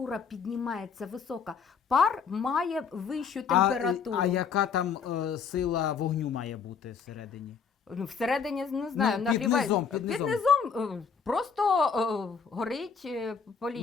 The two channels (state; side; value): quieter; right; 6.1 dB